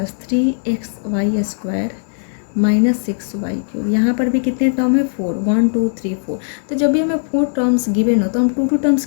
3xy square -6y³। यहाँ पर भी कितने टर्म है, 4, 1 2 3 4। तो जब भी हमें 4 टर्म्स गिवन हो तो हम 2 टर्म्स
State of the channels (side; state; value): right; silent; digital silence